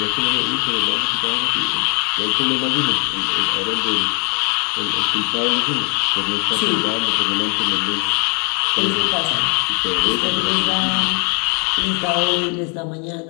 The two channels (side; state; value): right; quieter; 35.3 dB